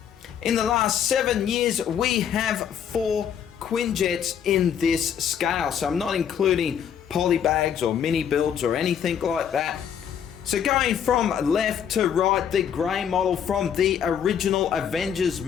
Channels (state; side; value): quieter; right; 8.5 dB